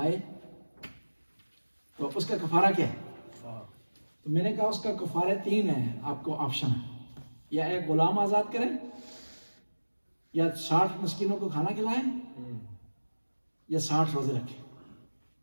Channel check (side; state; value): both; inverted; correlation -1.00